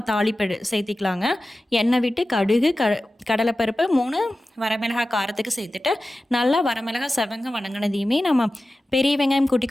தாளிப்பு சேர்த்திக்கலாங்க. எண்ணெய் விட்டு கடுகு கடலைப்பருப்பு 3 வரமிளகாய் காரத்துக்கு சேர்த்துட்டு நல்லா வரமிளகாய் செவங்க வணங்கினதையுமே நம்ம பெரிய வெங்காயம் குட்டி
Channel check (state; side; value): normal; both; correlation 0.95